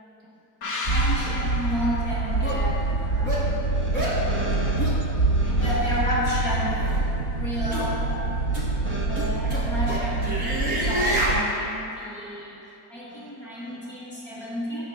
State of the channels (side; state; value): right; late; 4.1 ms